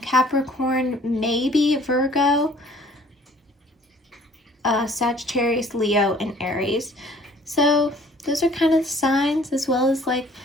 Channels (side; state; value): both; normal; correlation 0.55